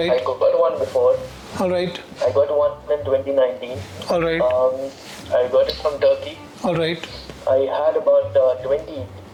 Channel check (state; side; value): identical; both; correlation 1.00